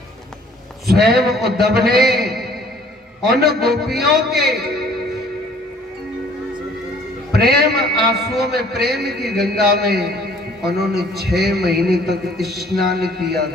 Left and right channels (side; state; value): both; normal; correlation 0.56